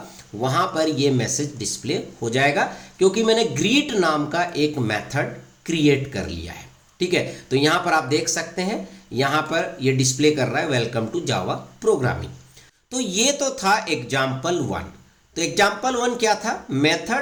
वहां पर ये मैसेज डिस्प्ले हो जाएगा, क्योंकि मैंने ग्रीट नाम का एक मेथड क्रिएट कर लिया है, ठीक है। तो यहां पर आप देख सकते हैं यहां पर ये डिस्प्ले कर रहा है वेलकम टू जावा प्रोग्रामिंग। तो ये तो था एग्जाम्पल 1। तो एग्जाम्पल 1 क्या था,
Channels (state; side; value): identical; both; correlation 1.00